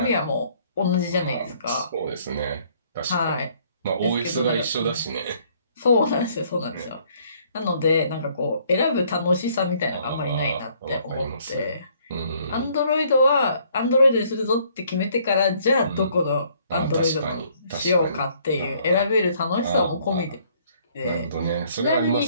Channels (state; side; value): inverted; both; correlation -0.63